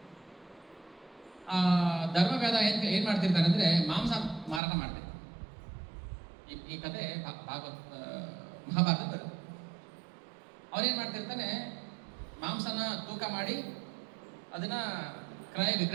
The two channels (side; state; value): left; drops out; at 4.6 s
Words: ಧರ್ಮವ್ಯಾಧ ಏನ್ ಮಾಡ್ತಿರ್ತಾನೆ ಅಂದ್ರೆ, ಮಾಂಸ ಮಾರಾಟ ಮಾಡ್ತಾರೆ. ಈ ಕಥೆ ಮಹಾಭಾರತ ಬರುತ್ತೆ. ಅವನೇನ್ ಮಾಡ್ತಿರ್ತಾನೆ, ಮಾಂಸನ ತೂಕ ಮಾಡಿ ಅದನ್ನ ಕ್ರಯ